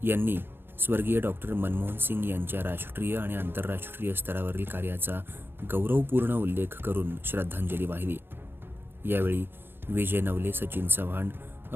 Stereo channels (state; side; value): late; left; 0.10 ms